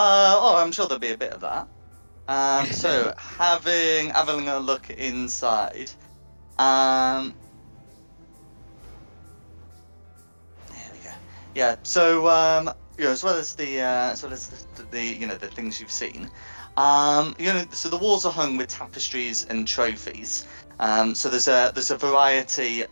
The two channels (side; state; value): both; inverted; correlation -1.00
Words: sure there'll be a bit of that. So having a look inside. There we go. Yeah. So as well as the the things you've seen, so the walls are hung with tapestries and trophies. So there's a variety